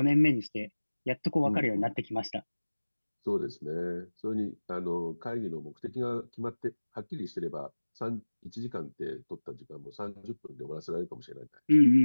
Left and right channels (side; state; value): both; inverted; correlation -1.00